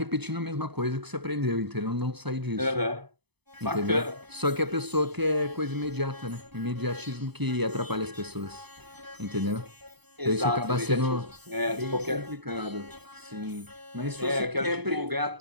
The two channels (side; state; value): left; late; 0.99 ms